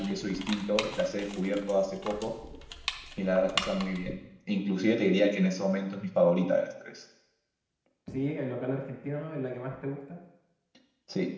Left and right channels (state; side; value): identical; both; correlation 1.00